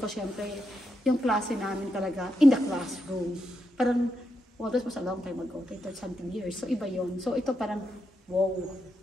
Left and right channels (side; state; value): both; normal; correlation 0.84